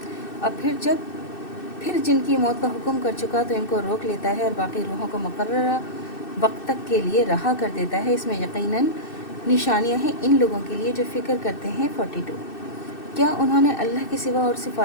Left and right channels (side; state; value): right; late; 2.6 ms